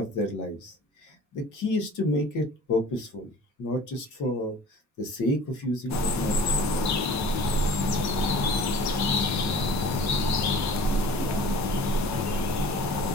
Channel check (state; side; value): normal; both; correlation 0.45